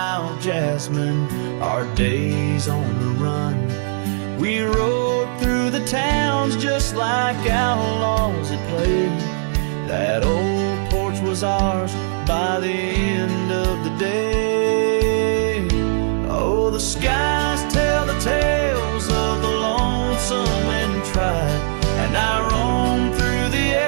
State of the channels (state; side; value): silent; left; digital silence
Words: jasmine, our days on the run. We rode through the towns just like outlaws at play. That old porch was ours by the end of the day. Oh, the skies tell the tales of the lonesome and tried, and I roam through the